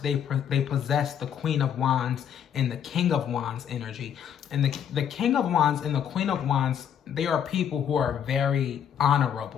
possess the Queen of Wands and the King of Wands energy. And the King of Wands and the Queen of Wands, they are people who are very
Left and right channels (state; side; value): quieter; right; 8.7 dB